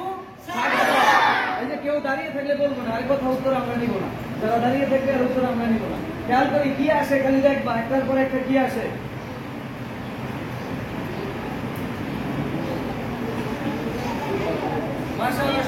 এই যে কেউ দাঁড়িয়ে থাকলে বলবো না, আরেক কথা উত্তর আমরা নিব না। যারা দাঁড়িয়ে থাকবে আর উত্তর আমরা নিব না। খেয়াল করি কি আসে, খালি দেখবা একটার পর একটা কি আসে। মাশাআল্লাহ,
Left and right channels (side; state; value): both; identical; correlation 1.00